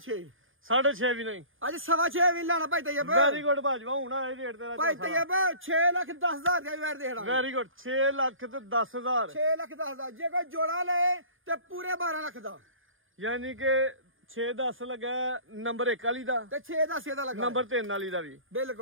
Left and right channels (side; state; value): left; late; 0.59 ms